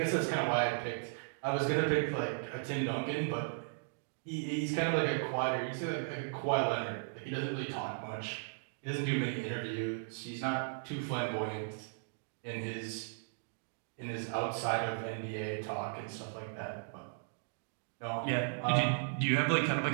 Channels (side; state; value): left; silent; digital silence